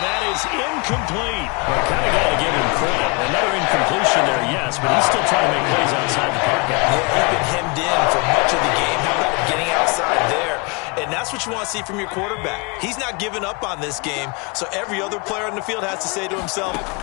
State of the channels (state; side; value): quieter; right; 29.3 dB